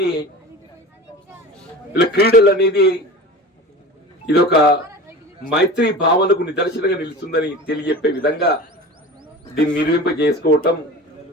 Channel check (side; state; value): both; normal; correlation 0.35